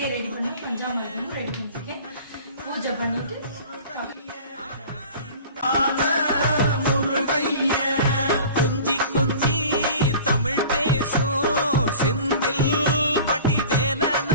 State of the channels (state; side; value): inverted; both; correlation -0.41